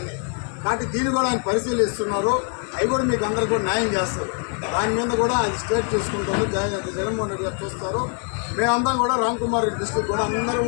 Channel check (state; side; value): quieter; right; 39.7 dB